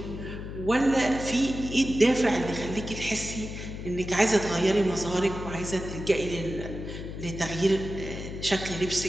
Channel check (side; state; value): left; noise; hum, 8 dB below the sound